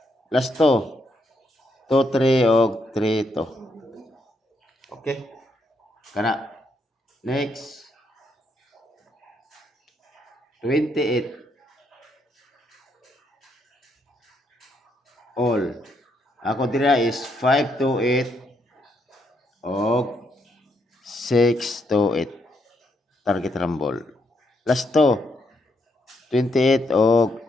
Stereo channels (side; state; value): both; normal; correlation 0.77